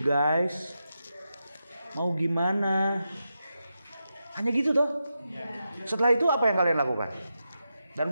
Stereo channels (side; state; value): both; inverted; correlation -0.88